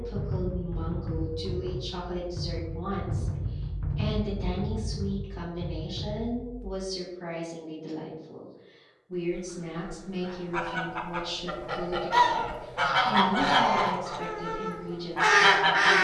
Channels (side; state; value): both; identical; correlation 1.00